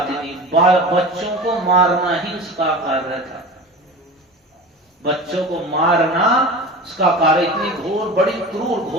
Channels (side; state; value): both; normal; correlation 0.33